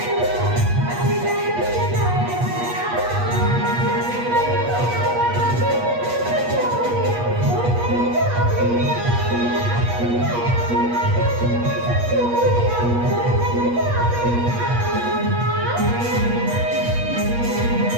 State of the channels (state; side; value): late; left; 8.4 ms